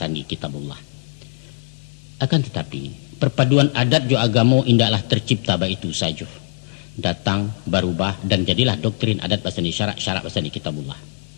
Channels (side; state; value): right; silent; digital silence